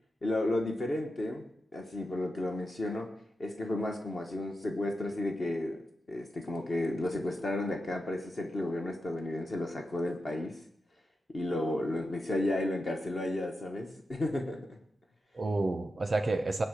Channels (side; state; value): both; normal; correlation 0.89